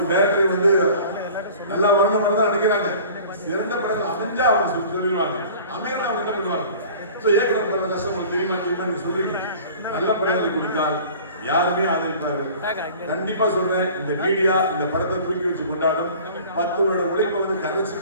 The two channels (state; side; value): inverted; both; correlation -0.45